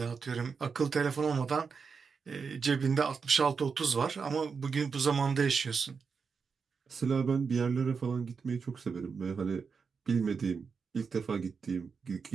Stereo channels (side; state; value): left; quieter; 5.5 dB